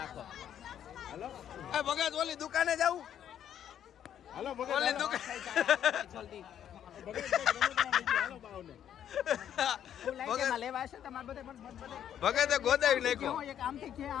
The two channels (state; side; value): quieter; right; 9.9 dB